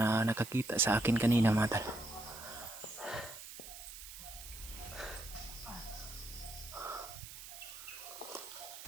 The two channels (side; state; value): right; noise; hiss, 12 dB below the sound